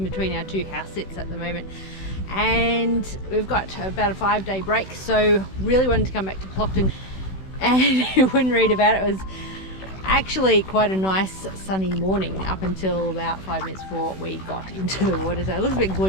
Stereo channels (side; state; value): right; late; 16 ms